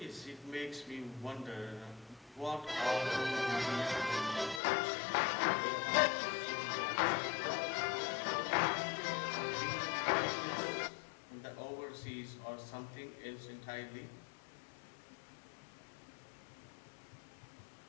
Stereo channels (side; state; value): right; drops out; at 4.6 s